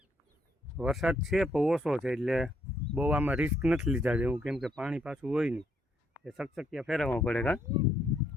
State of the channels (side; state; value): both; normal; correlation 0.72